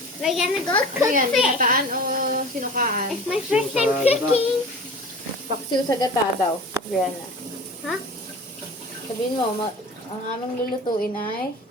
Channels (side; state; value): both; normal; correlation 0.38